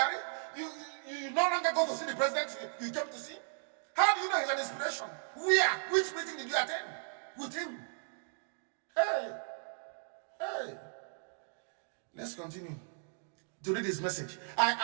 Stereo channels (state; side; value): silent; left; digital silence